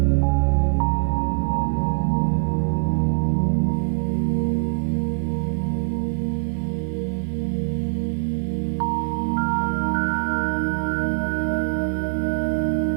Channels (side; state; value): left; silent; 63 dB below the other